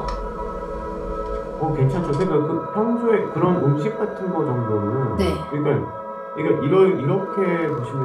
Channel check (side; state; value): both; identical; correlation 1.00